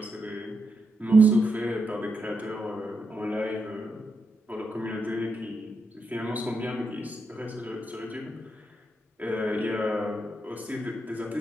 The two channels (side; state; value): both; normal; correlation 0.83